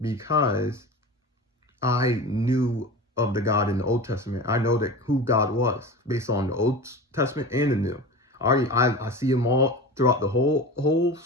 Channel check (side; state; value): both; normal; correlation 0.31